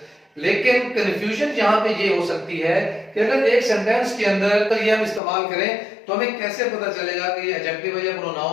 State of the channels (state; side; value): drops out; right; at 5.2 s